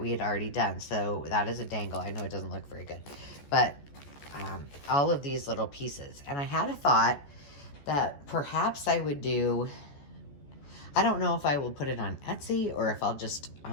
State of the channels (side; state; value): right; late; 14 ms